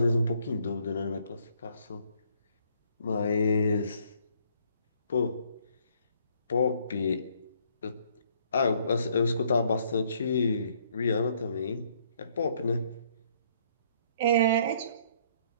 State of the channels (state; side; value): inverted; both; correlation -0.66